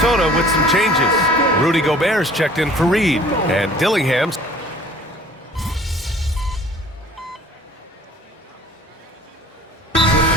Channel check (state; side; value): normal; both; correlation 0.51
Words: with some changes. Rudy Gobert's checked in for Reed. And Dillingham's.